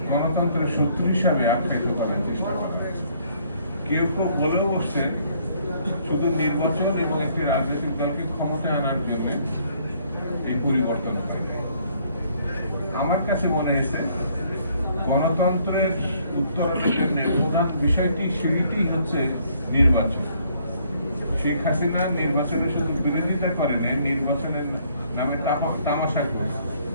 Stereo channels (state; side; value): inverted; both; correlation -0.65